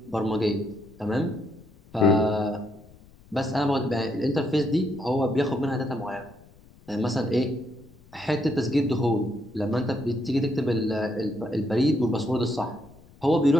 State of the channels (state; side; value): noise; left; rumble, 25 dB below the sound